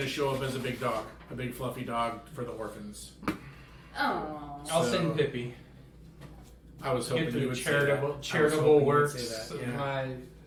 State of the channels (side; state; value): both; identical; correlation 1.00